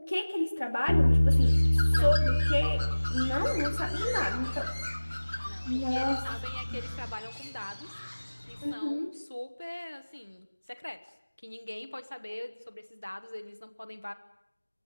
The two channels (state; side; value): inverted; both; correlation -1.00